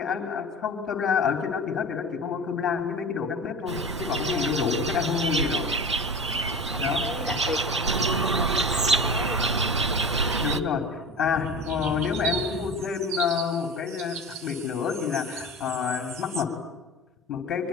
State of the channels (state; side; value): normal; both; correlation 0.32